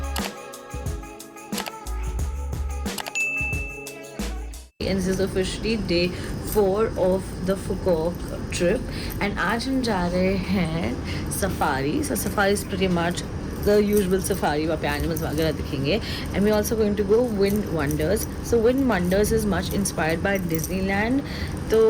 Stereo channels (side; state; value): both; identical; correlation 1.00